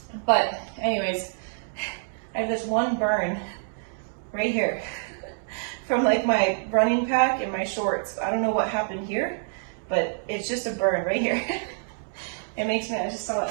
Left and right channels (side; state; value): left; silent; digital silence